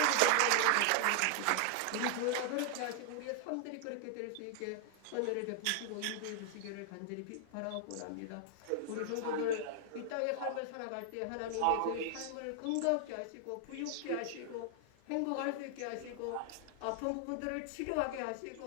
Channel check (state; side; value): different; both; correlation 0.00